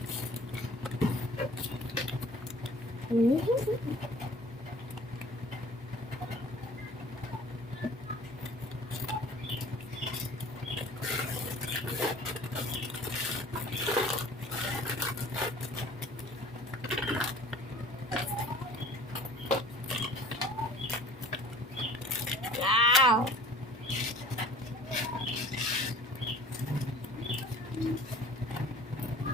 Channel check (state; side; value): normal; both; correlation 0.47